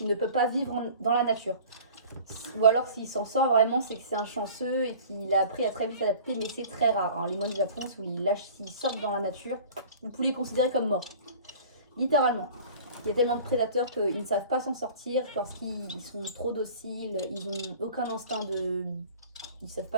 ne peut pas vivre dans la nature. Ou alors s'il s'en sort vraiment, c'est que c'est un chanceux et qu'il a appris à très vite s'adapter, mais c'est très rare. Hein. Les moineaux du Japon, s'ils sortent dans la nature, vous pouvez les considérer comme morts. Littéralement. Il y a tellement de prédateurs qu'ils ne savent pas s'en sortir parce qu'ils sont trop dociles, ils n'ont aucun instinct de... Ils ne savent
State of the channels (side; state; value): both; inverted; correlation -0.44